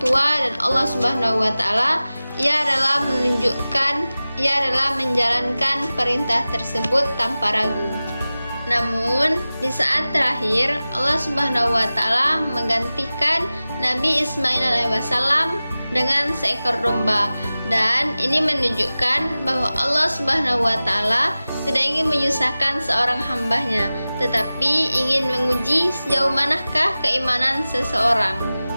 tua dan Allah Subhanahu wa Ta'ala, ia rela menjalankan perintah tersebut tanpa ragu. Namun di saat terakhir Allah Subhanahu wa Ta'ala menggantikan Nabi Ismail alaihissalam dengan seekor domba, dan ini menunjukkan bahwa Allah Subhanahu wa Ta'ala tidak ingin menyusahkan seorang hambanya, tetapi ingin menguji sejauh manakah keimanan seseorang.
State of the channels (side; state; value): both; inverted; correlation -0.97